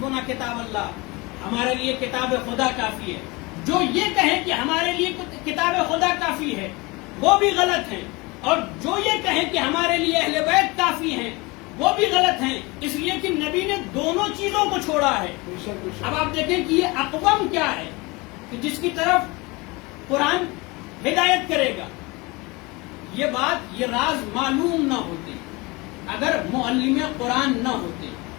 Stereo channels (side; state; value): right; quieter; 24.9 dB